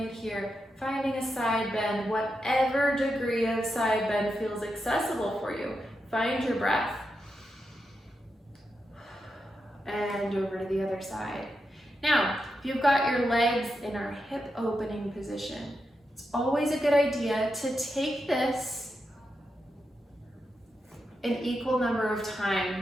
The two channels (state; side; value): normal; both; correlation 0.87